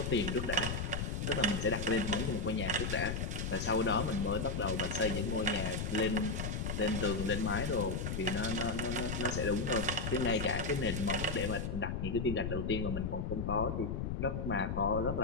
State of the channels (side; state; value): left; noise; rumble, 2 dB below the sound